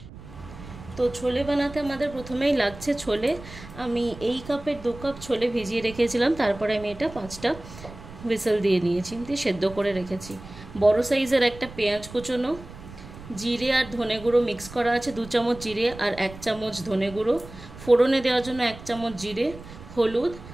তো ছোলে বানাতে আমাদের প্রথমেই লাগছে ছোলে। আমি এই কাপের 2 কাপ ছোলে ভিজিয়ে রেখেছিলাম, তারপরে আমি এটা 5টা হুইসেল দিয়ে নিয়েছি, দিয়ে সেদ্ধ করে রেখেছি। বড় সাইজের একটা পেঁয়াজ কুচোনো, জিরে আর ধনে গুঁড়ো মিক্স করা আছে 2 চামচ জিরে আর 1 চামচ ধনে গুঁড়ো, ফোড়নে দেওয়ার জন্য 1 চামচ জিরে, হলুদ,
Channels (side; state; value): right; noise; rumble, 16 dB below the sound